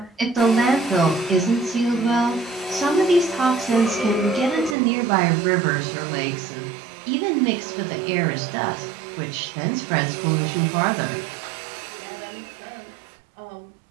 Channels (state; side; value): drops out; left; at 4.8 s